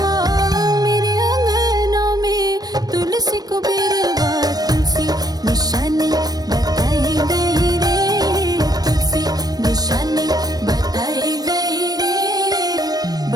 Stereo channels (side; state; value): left; late; 0.19 ms